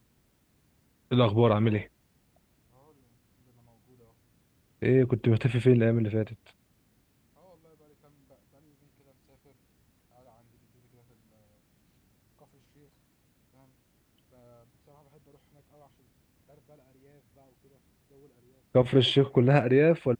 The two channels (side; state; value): both; identical; correlation 1.00